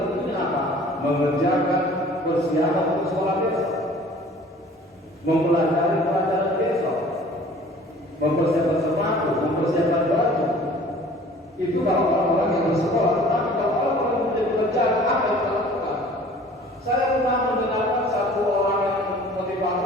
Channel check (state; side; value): normal; both; correlation 0.49